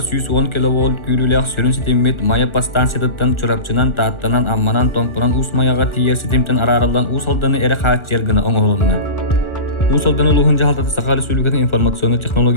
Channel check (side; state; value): right; late; 1.4 ms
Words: 110 киловольт күрүләк сөрүн сетимет мая пастанциятан чурапчынан тааттанан амманан томпуран ус маяга тиер сетимтен араралдан усалданы эре хаат жергына оңолунна. Усалдан улугун жаалтаты Саха Республикатын информационный